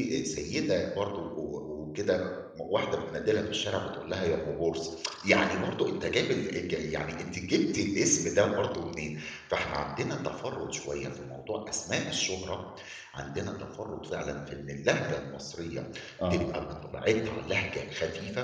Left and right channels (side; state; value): both; identical; correlation 1.00